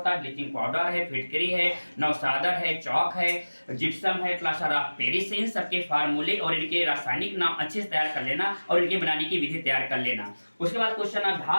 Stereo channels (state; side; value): inverted; both; correlation -1.00